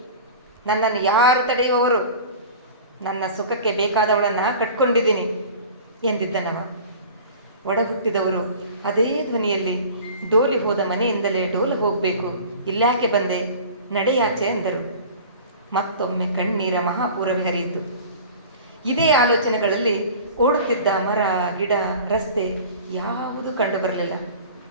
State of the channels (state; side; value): inverted; both; correlation -0.40